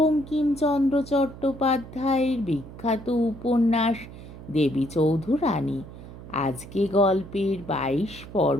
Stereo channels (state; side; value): noise; right; hum, 15 dB below the sound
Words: চট্টোপাধ্যায়ের বিখ্যাত উপন্যাস দেবী চৌধুরানী। আজকে গল্পের 22